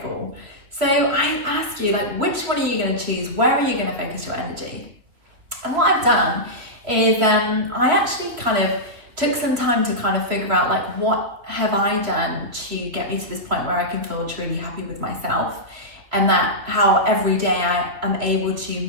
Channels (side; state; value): left; late; 2.8 ms